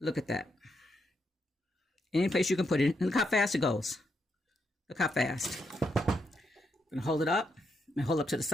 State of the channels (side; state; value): both; normal; correlation 0.80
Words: Look at that. Any place you can put it. And look how fast it goes. Look how fast. I'm going to hold it up. I'm going to hold it up to the